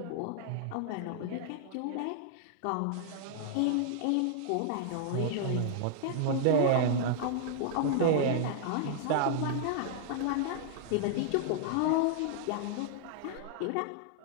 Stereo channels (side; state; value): both; different; correlation -0.01